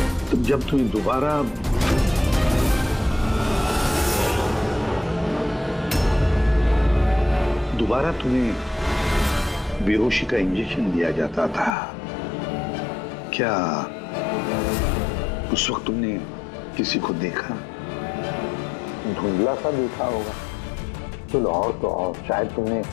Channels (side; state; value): right; drops out; at 11.8 s